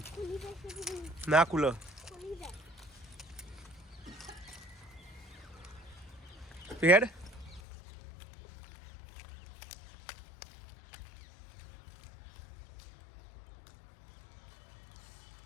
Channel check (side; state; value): right; drops out; at 7.6 s